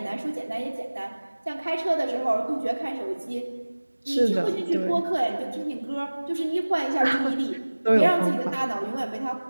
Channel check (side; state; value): both; inverted; correlation -1.00